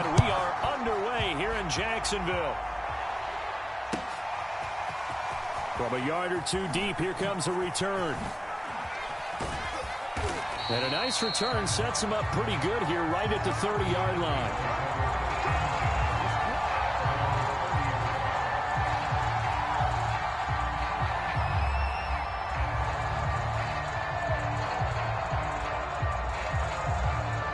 we are underway here in Jacksonville. From a yard or two deep, here comes a return. And a nice return sets him up pretty good here right at the 30-yard line.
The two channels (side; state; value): both; identical; correlation 1.00